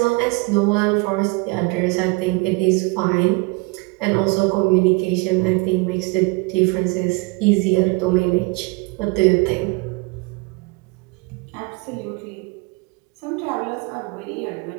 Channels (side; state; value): left; quieter; 27.5 dB